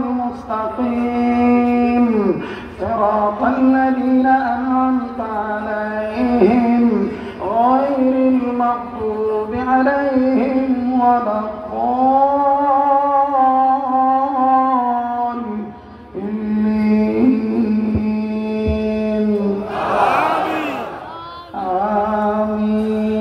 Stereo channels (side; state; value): both; identical; correlation 1.00